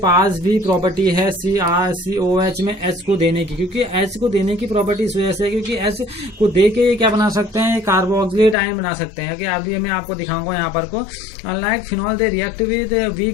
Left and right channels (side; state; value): right; drops out; at 8.6 s